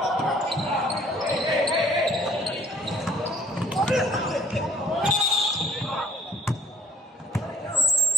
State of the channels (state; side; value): normal; both; correlation 0.55